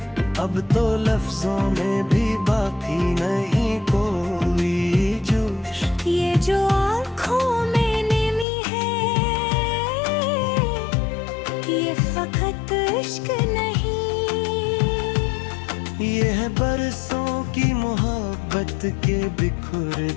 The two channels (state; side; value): drops out; right; at 8.5 s